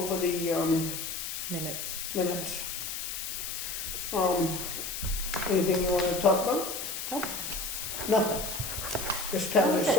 the Minutes. minutes. Anything you want to talk about? Nope. Nothing. This town is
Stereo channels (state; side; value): noise; left; hiss, 5 dB below the sound